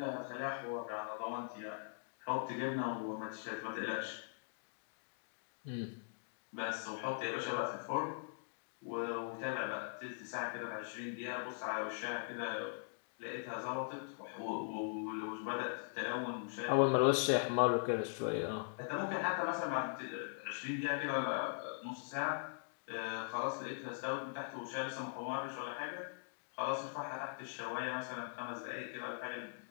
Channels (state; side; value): silent; right; digital silence